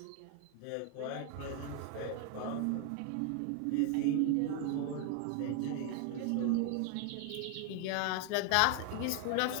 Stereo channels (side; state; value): both; different; correlation 0.01